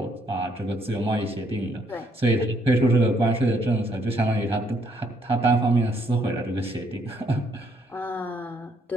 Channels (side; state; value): both; normal; correlation 0.70